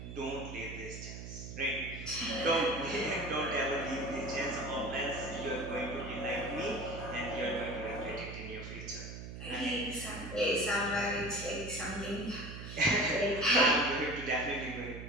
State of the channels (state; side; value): noise; right; hum, 9 dB below the sound